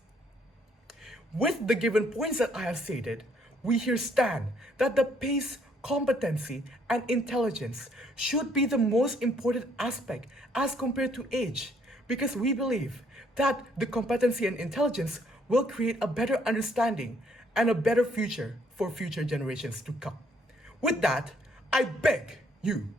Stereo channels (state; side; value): normal; both; correlation 0.67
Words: With the given points that I have stated, we here stand that the pace, competency, and intelligence should be the most important aspect as compared to age, because we believe that the competency and intelligence will create a better understanding and a better future for future generations to come. With that, I beg you